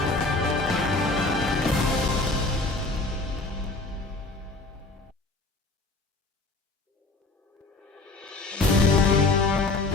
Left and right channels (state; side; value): quieter; right; 3.3 dB